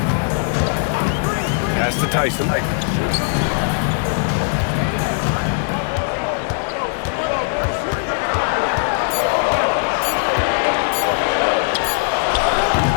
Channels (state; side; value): silent; right; digital silence